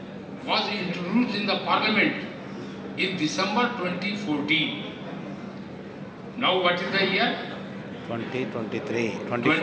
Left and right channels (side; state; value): both; identical; correlation 1.00